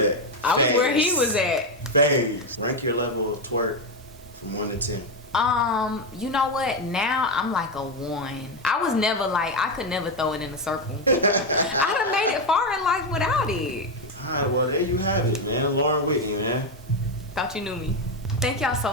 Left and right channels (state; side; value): normal; both; correlation 0.08